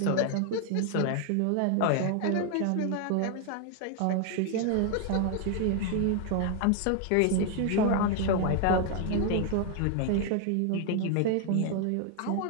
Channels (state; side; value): different; both; correlation 0.00